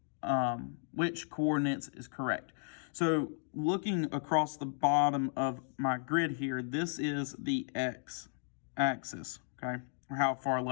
coordinates is correct. So looking across the bottom of my grid here, this is the x-axis, okay, or how far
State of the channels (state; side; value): silent; right; digital silence